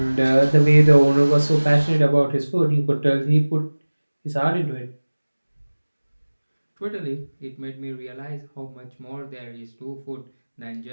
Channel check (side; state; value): both; inverted; correlation -1.00